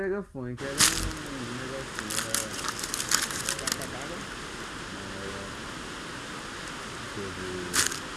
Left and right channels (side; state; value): both; identical; correlation 1.00